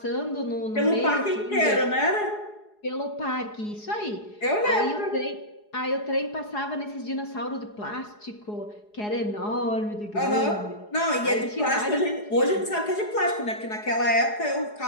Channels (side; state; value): right; late; 4.8 ms